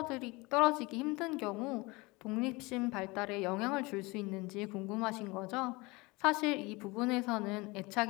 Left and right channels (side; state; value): right; quieter; 24.2 dB